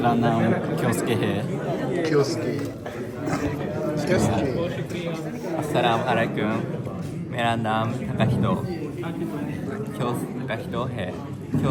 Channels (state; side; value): identical; both; correlation 1.00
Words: नाम क्योस्के है। क्योस्के अस्सलाम वालेकुम। मेरा नाम ताकाहितो है।